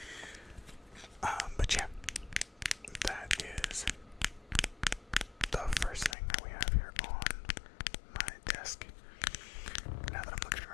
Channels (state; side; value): drops out; right; at 6.2 s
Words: But yeah, that is the first thing that we have here on my desk. Now that I'm looking